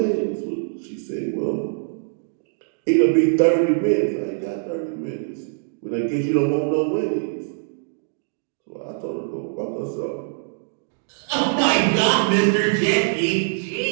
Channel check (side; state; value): left; silent; digital silence